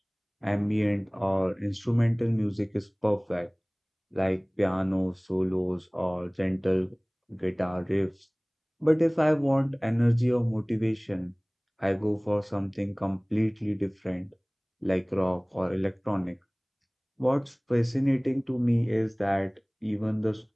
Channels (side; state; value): both; identical; correlation 1.00